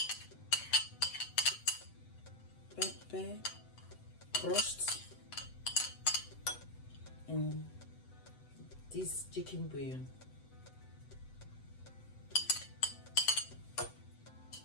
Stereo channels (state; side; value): late; right; 8.0 ms